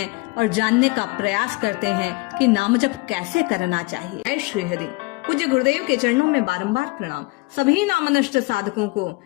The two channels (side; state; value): right; quieter; 25.5 dB